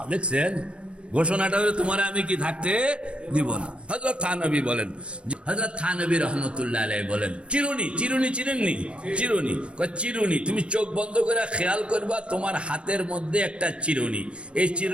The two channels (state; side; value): late; left; 0.058 ms